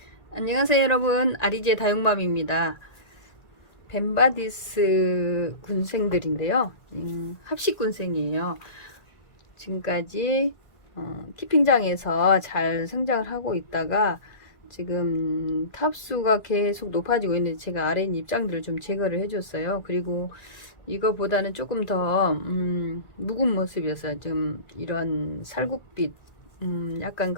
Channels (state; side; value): late; right; 1.9 ms